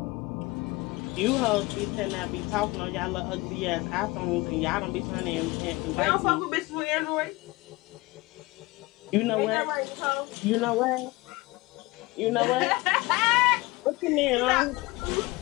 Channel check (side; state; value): right; quieter; 22.3 dB